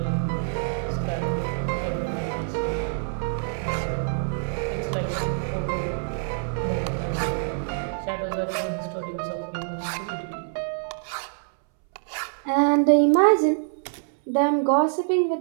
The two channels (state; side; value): silent; left; 61 dB below the other